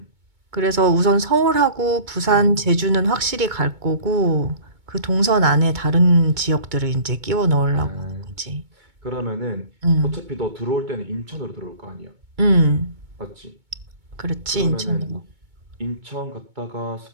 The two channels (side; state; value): left; late; 2.2 ms